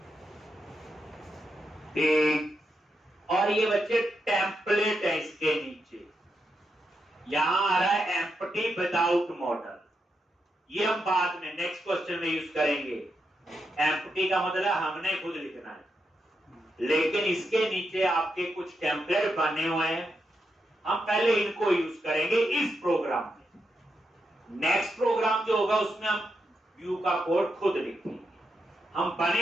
ठीक, और ये बच्चे टेम्पलेट है, इसके नीचे यहां आ रहा है एम्प्टी विदाउट मॉडल। ये हम बाद में नेक्स्ट क्वेश्चन में यूज करेंगे। एम्प्टी का मतलब हमने खुद लिखना है, लेकिन इसके नीचे आपके कुछ टेम्पलेट बने हुए हैं, हम पहले इनको यूज करेंगे इस प्रोग्राम में। नेक्स्ट प्रोग्राम जो होगा उसमें हम व्यू का कोड खुद लिखेंगे। हम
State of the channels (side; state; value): both; normal; correlation 0.84